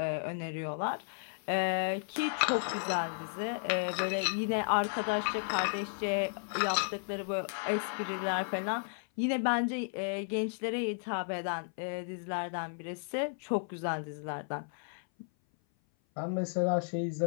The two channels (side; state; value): right; silent; 55 dB below the other